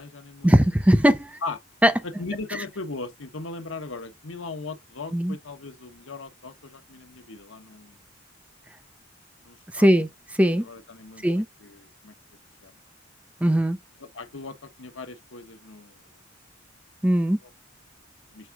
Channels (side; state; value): both; normal; correlation 0.90